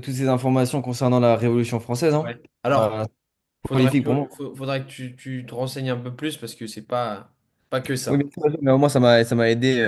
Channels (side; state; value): both; identical; correlation 1.00